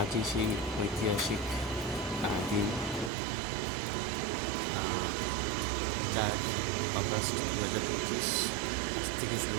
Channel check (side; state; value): left; drops out; at 3.1 s